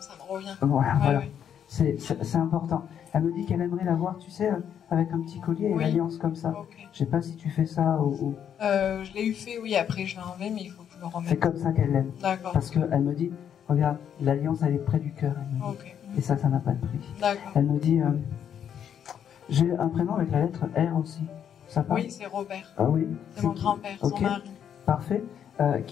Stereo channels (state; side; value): quieter; right; 8.8 dB